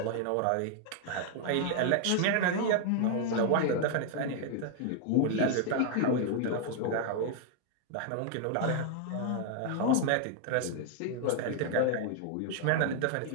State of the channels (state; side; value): different; both; correlation 0.00